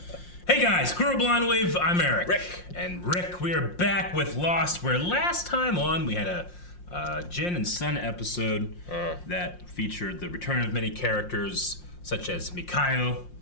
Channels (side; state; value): right; late; 5.6 ms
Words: Hey guys, Crew Blind Wave, I'm Eric. Rick. And Rick, we are back with Lost, where last time on we had a Jin and Sun episode that featured the return of many characters, such as Mikhail.